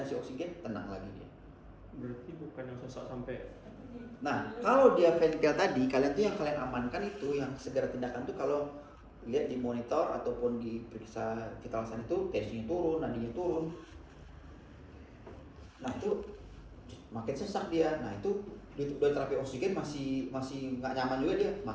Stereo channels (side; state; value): both; identical; correlation 1.00